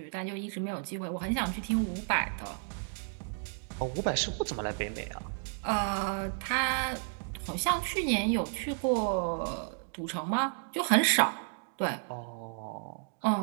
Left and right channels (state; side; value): silent; left; 56 dB below the other